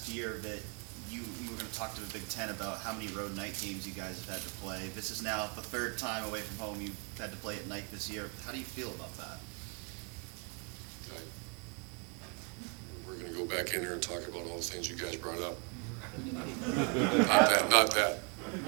year that you were going to talk to the Big Ten about how many road night games you guys have had to play. This is now the 3rd time away from home you've had to play at night this year. How do you feel about that? We're going to go back in here and talk about all the things you guys brought up. Not that.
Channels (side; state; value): left; quieter; 36.7 dB